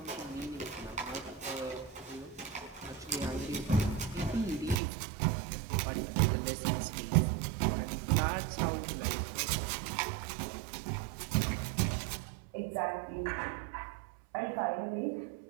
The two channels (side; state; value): left; drops out; at 4.8 s